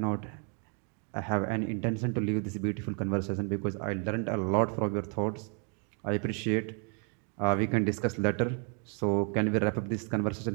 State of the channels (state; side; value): quieter; left; 38.9 dB